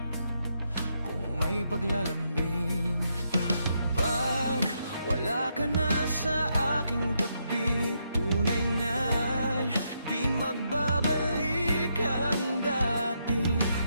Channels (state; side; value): inverted; both; correlation -0.79